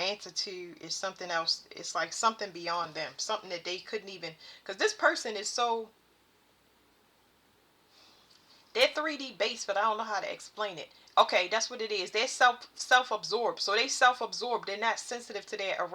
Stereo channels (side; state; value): both; identical; correlation 1.00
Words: to. Is something else. It's like something beyond them. Something that they couldn't even. Because this person is so. They're 3D based, but I don't know how to explain it. Okay, that's what it is. They're self-absorbed. So they self-absorbed. They're not sensitive to their